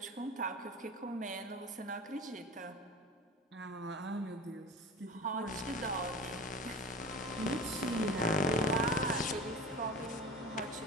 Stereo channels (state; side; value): normal; both; correlation 0.35